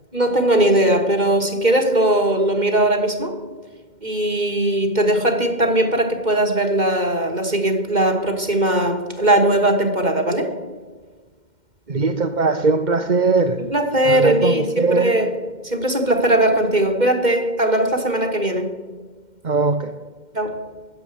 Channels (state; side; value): late; left; 2.1 ms